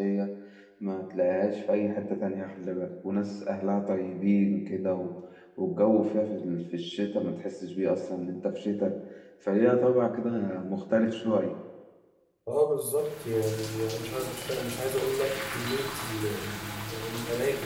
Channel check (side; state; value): both; identical; correlation 1.00